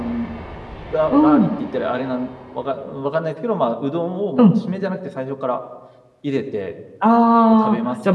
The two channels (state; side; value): identical; both; correlation 1.00